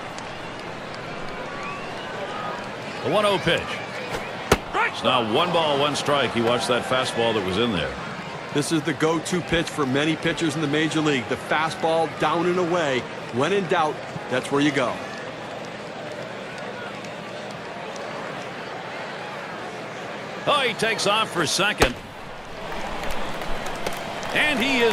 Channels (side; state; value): both; identical; correlation 1.00